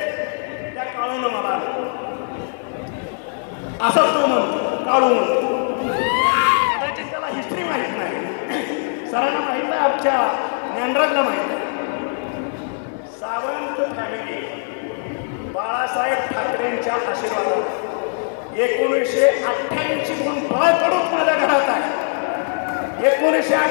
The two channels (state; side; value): silent; right; 65 dB below the other